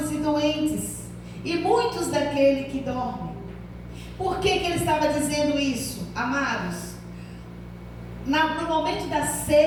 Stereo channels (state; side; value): identical; both; correlation 1.00